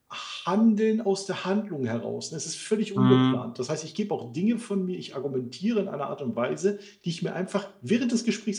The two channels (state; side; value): identical; both; correlation 1.00